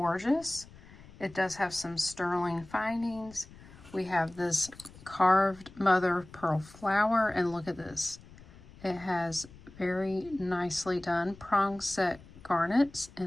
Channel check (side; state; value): left; noise; rumble, 21 dB below the sound